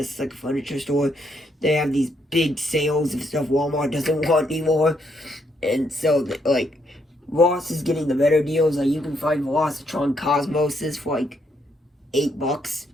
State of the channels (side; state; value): both; normal; correlation 0.75